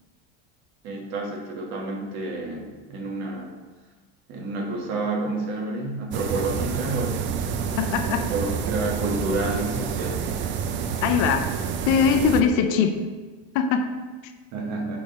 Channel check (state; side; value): normal; both; correlation 0.19